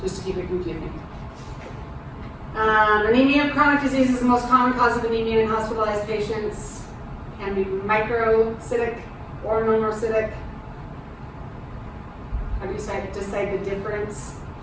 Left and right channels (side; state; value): both; identical; correlation 1.00